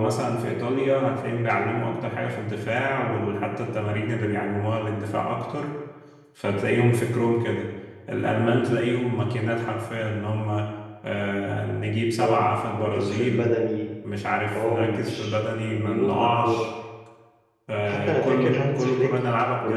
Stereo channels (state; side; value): identical; both; correlation 1.00